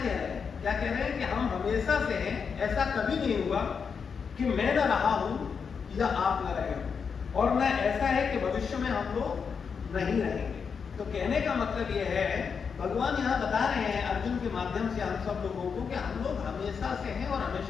रहे हैं? क्या कह रहे हैं कि हम हमेशा से हैं, ऐसा कभी नहीं हुआ कि मैं न रहा हूं या आप न रहे हो, और न ऐसा है कि भविष्य में हम लोग नहीं रहेंगे। तो कहने का मतलब यह है, भगवान यहाँ बता रहे हैं अर्जुन के माध्यम से हम सब लोगों को कि हम लोग हमेशा से हैं और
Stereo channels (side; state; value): right; quieter; 6.1 dB